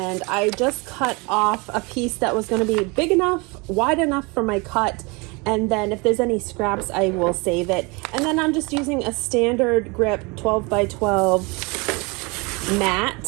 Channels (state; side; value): quieter; left; 28.1 dB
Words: I just cut off a piece that was gonna be big enough, wide enough for my cut. And then if there's any scraps, I will save it. And then I'm just using a standard grip 12 by 12